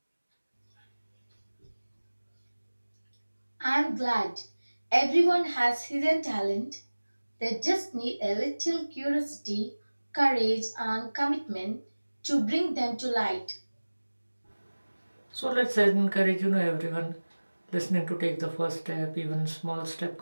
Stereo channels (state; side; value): inverted; both; correlation -1.00